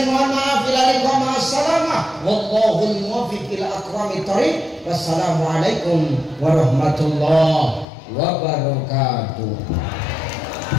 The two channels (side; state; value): right; drops out; at 7.9 s